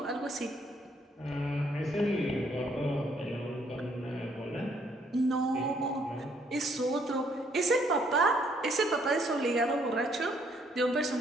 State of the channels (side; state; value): both; normal; correlation 0.67